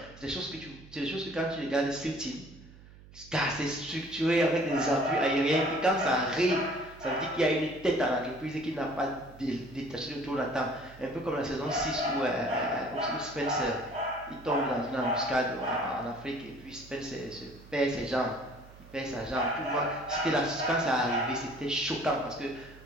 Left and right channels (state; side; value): noise; right; hum, 20 dB below the sound